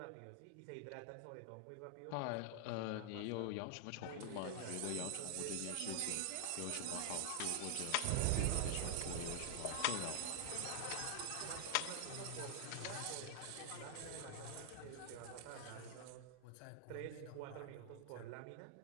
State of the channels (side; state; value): both; different; correlation 0.00